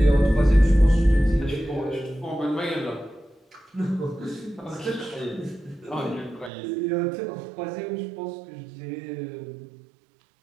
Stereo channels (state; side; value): drops out; left; at 6.5 s